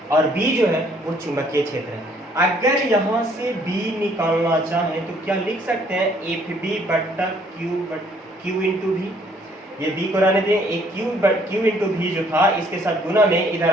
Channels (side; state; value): both; normal; correlation 0.63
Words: और B जो है वो चुंबकीय क्षेत्र है। अगर यहाँ से B निकालना चाहें तो क्या लिख सकते हैं, FB बट्टा Q इंटू V, ये B को रहने दें, एक Q इंटू V जो था इसके साथ गुना में इधर